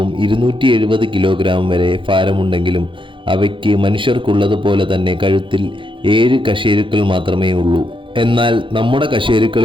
270 കിലോഗ്രാം വരെ ഭാരമുണ്ടെങ്കിലും അവയ്ക്ക് മനുഷ്യർക്കുള്ളതുപോലെ തന്നെ കഴുത്തിൽ 7 കശേരുക്കൾ മാത്രമേ ഉള്ളൂ. എന്നാൽ നമ്മുടെ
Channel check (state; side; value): late; left; 0.24 ms